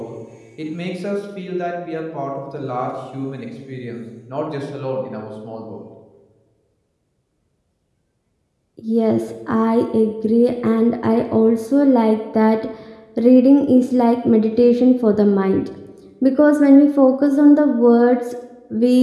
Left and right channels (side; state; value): both; identical; correlation 1.00